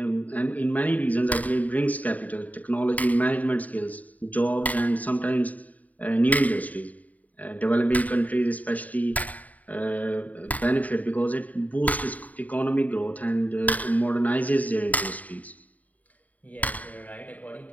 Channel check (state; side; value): late; right; 0.074 ms